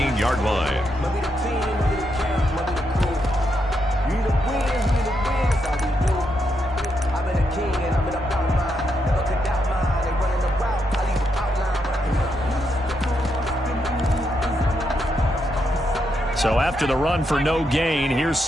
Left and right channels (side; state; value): both; normal; correlation 0.81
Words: line. So after the run for no gain, here's